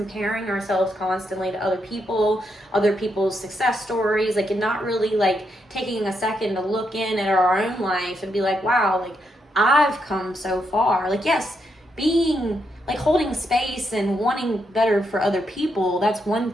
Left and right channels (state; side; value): normal; both; correlation 0.80